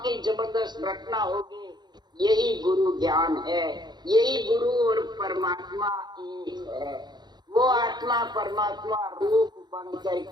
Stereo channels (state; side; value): late; left; 0.21 ms